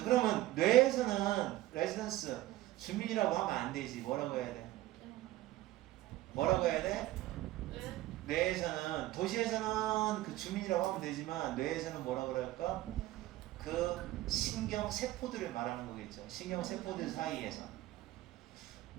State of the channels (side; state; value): left; quieter; 16.1 dB